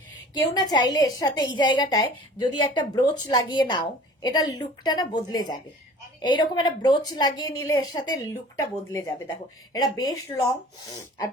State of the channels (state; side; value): normal; both; correlation 0.46